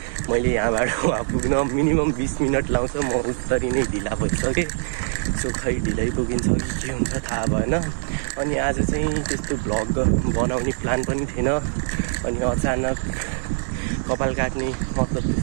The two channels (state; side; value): silent; left; digital silence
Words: मैले यहाँबाट वहाँ पुग्न मिनिमम 20 मिनेट लाउँछ। म उत्तरी नै ढिला भइसके। सो खै ढिलै पुगिन्छ कि के हुन्छ थाहा भएन। अनि आज चाहिँ त्यस्तो भ्लग बनाउने प्लान पनि थिएन। अनि अचानक कपाल काट्ने मतलब